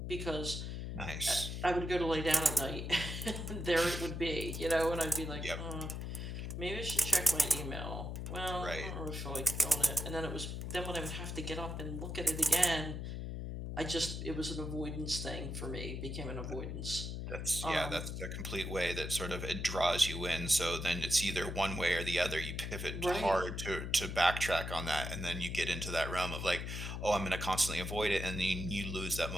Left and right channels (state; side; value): noise; left; hum, 5 dB below the sound